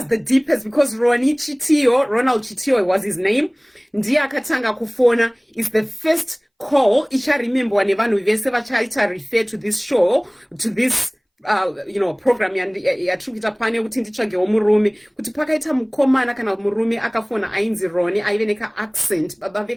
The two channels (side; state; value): both; identical; correlation 1.00